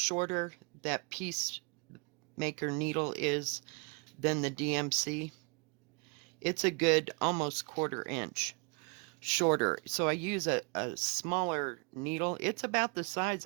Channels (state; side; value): quieter; left; 33.5 dB